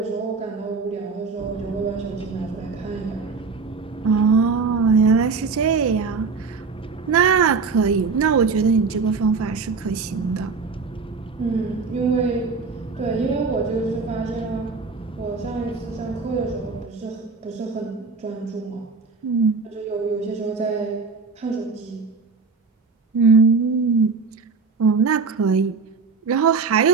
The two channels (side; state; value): left; quieter; 4.8 dB